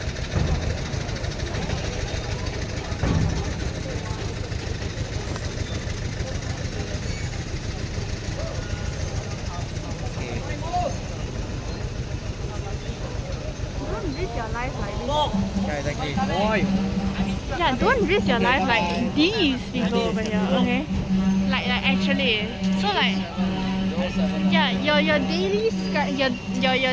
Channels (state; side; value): identical; both; correlation 1.00